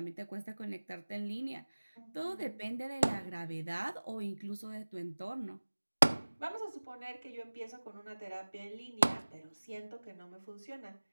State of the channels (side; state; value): both; inverted; correlation -1.00